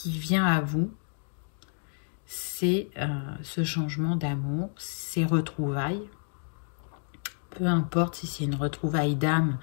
vient à vous, c'est ce changement d'amour, ces retrouvailles. Peu importe si c'est une retrouvaille d'âme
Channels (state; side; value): silent; right; digital silence